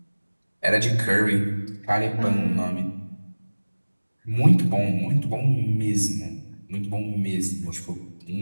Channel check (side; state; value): both; inverted; correlation -1.00